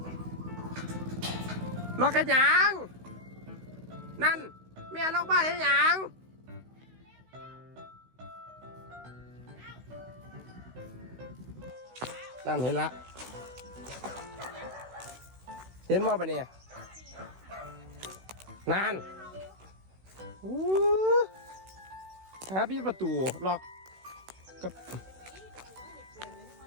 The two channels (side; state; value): left; late; 16 ms